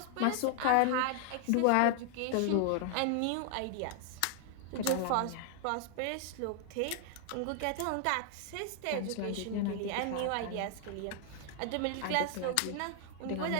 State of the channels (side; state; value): both; different; correlation 0.00